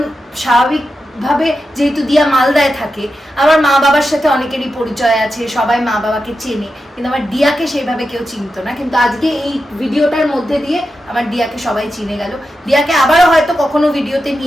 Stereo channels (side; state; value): both; normal; correlation 0.89